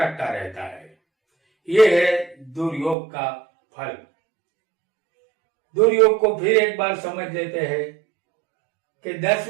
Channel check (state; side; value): drops out; left; at 3.0 s